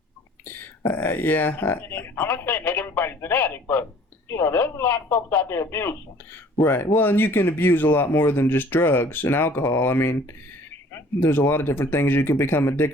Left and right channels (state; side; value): normal; both; correlation 0.52